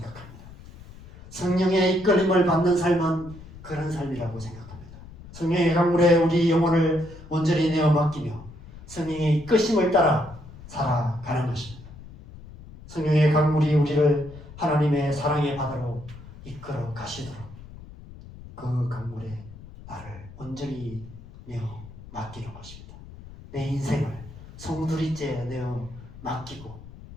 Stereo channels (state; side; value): noise; left; rumble, 17 dB below the sound